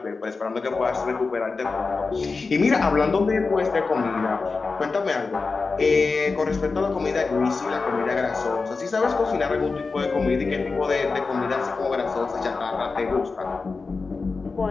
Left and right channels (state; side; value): quieter; right; 4.2 dB